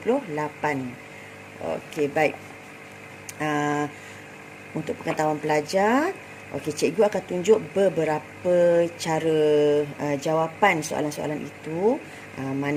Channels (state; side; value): identical; both; correlation 1.00